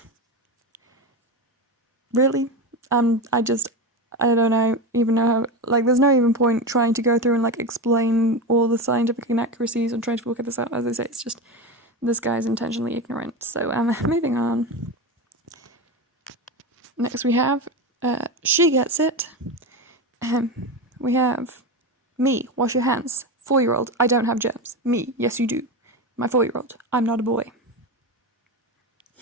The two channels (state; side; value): normal; both; correlation 0.20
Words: Really? I don't even know how, like, there's no even point trying to go through and, like, explain all the scientific inaccuracies and trying to work this out. As I say, it's just, this guy's intentionally ignorant. So, moving on. Next we have, she gets it. We have, me, wash your hands. 4-year-old, I don't have germs. Me, yes you do. My 4-year-old, I'm not a boy.